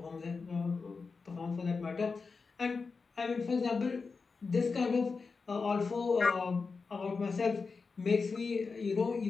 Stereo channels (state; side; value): quieter; right; 4.6 dB